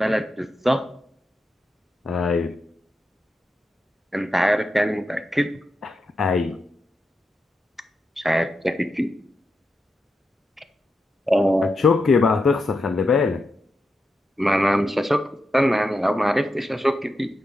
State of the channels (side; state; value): both; normal; correlation 0.87